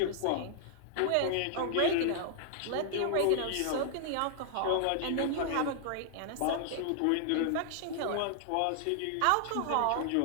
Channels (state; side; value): different; both; correlation -0.01